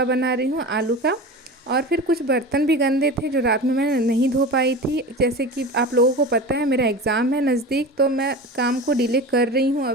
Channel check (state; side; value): normal; both; correlation 0.31